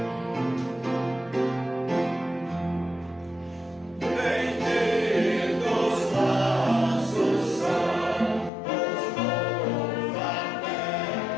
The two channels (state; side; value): drops out; right; at 8.5 s